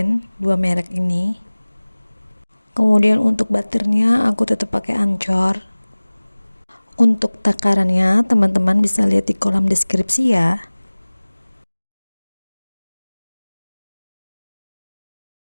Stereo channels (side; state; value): both; inverted; correlation -1.00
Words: merek ini. Kemudian untuk butternya aku tetap pakai Ancor. Untuk takarannya teman-teman bisa lihat di kolom deskripsi ya.